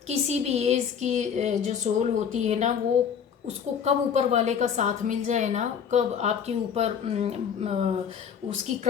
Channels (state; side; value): quieter; right; 7.5 dB